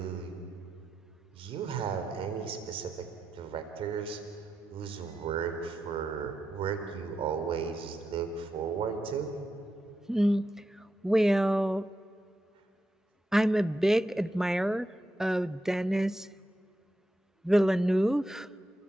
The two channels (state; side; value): normal; both; correlation 0.87